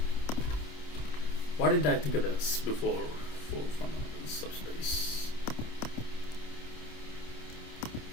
why did I think of this before? For fundamental subspace.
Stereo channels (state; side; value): late; right; 27 ms